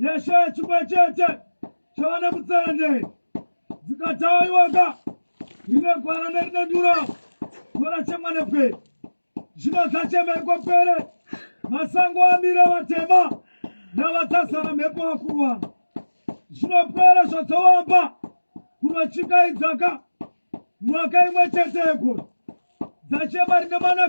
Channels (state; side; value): inverted; both; correlation -1.00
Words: chimwe chete chavana mutsende dzikataiwaka rine gwara nerine ndura vorachemwa nepere zvino dzachemerwa pere masango amira vatema navatasara mhepo vakuru vavo zvinopera zvadzawamba kunotsikaidzaka mwaka imwe chete yegore dzachema rine